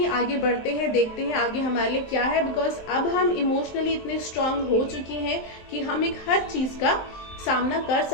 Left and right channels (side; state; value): right; late; 23 ms